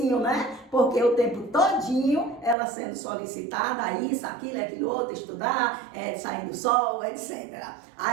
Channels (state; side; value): drops out; left; at 2.6 s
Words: né? Porque o tempo todinho ela sendo solicitada, isso, aquilo outro, estudar, sair do sol, etc.